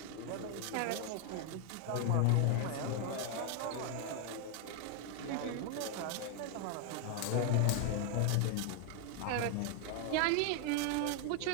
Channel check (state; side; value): different; both; correlation 0.00